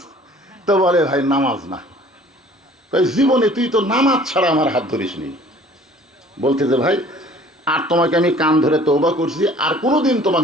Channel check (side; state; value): both; normal; correlation 0.52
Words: তো বলে ভাই নামাজ না। জীবনে তুই তো নামাজ ছাড়া আমার হাত ধরিস নি। বলতেছে ভাই আর তোমাকে আমি কান ধরে তওবা করছি, আর কোনোদিন তোমার